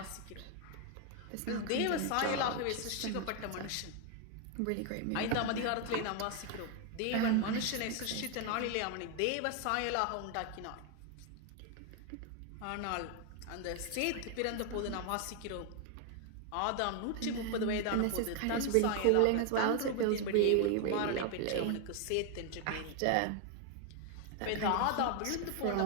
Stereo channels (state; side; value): different; both; correlation 0.00